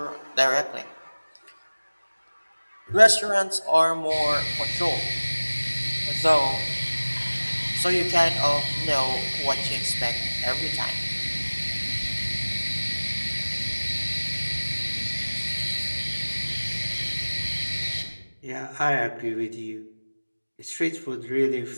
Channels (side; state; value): both; inverted; correlation -1.00